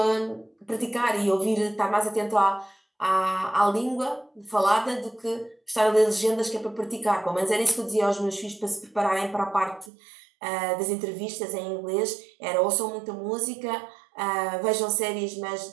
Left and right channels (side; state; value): left; drops out; at 9.9 s